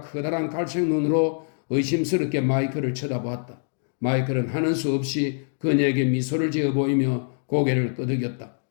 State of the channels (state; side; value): silent; right; digital silence